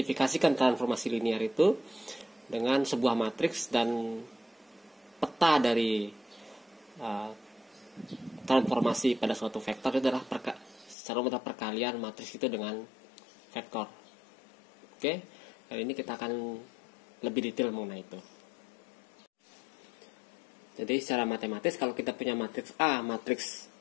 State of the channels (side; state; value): right; drops out; at 11.0 s